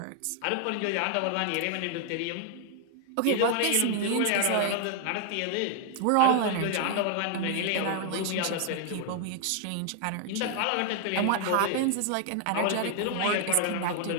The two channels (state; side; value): different; both; correlation 0.00